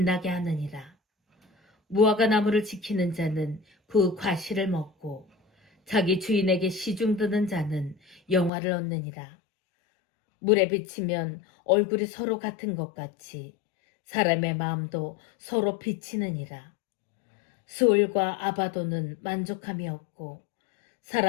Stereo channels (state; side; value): drops out; right; at 8.5 s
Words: 하느니라. 무화과 나무를 지키는 자는 그 과실을 먹고 자기 주인에게 시중드는 자는 영화를 얻느니라. 물에 비치면 얼굴이 서로 같은 것 같이 사람의 마음도 서로 비치느니라. 스올과 아바도는 만족함이 없고